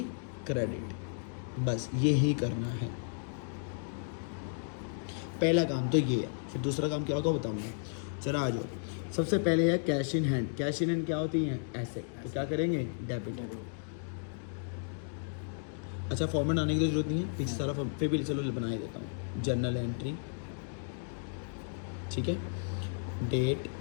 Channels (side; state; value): right; silent; digital silence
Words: क्रेडिट। बस यही करना है, पहला काम तो ये है। फिर दूसरा काम क्या होगा बताऊंगा, चला आ जाओ। सबसे पहले है cash in hand. Cash in hand क्या होती हैं, एसेट, तो क्या करेंगे, डेबिट। अच्छा फॉर्मेट आने की तो जरूरत नहीं है, पीछे सारा फॉर्म फिर भी चलो बना ही देता हूँ। जर्नल एंट्री, ठीक है, डेट,